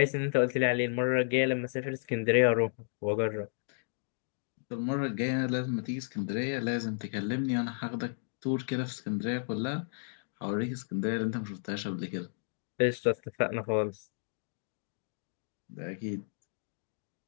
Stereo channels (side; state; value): right; silent; digital silence